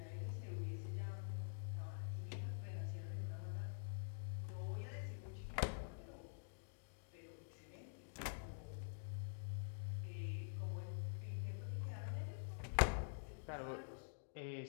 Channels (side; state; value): right; silent; digital silence